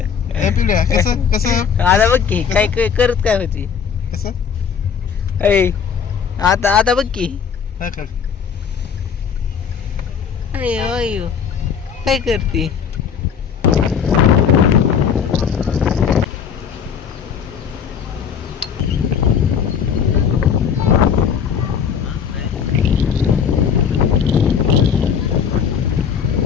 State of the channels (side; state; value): right; quieter; 7.2 dB